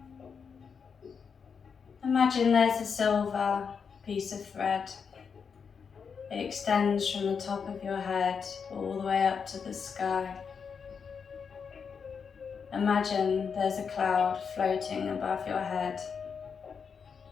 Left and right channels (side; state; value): right; quieter; 6.2 dB